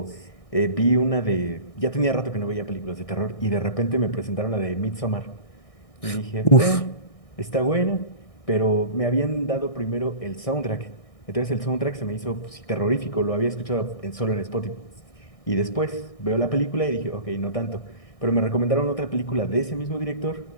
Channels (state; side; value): late; right; 1.6 ms